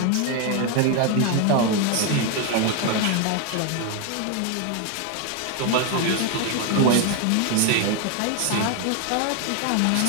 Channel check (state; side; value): different; both; correlation 0.01